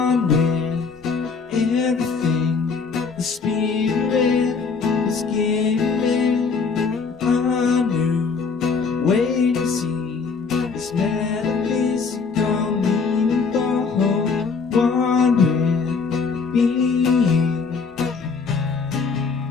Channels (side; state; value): right; quieter; 5.0 dB